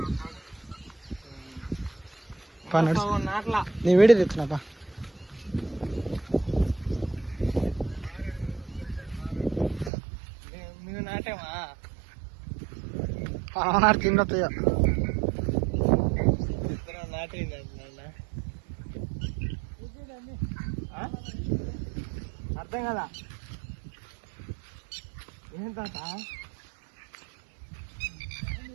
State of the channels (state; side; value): drops out; left; at 9.9 s